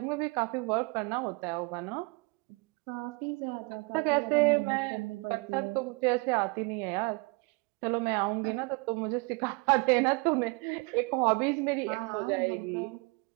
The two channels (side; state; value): left; quieter; 28.8 dB